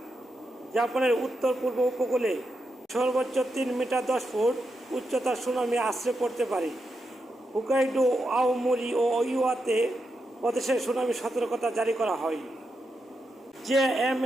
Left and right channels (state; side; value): normal; both; correlation 0.85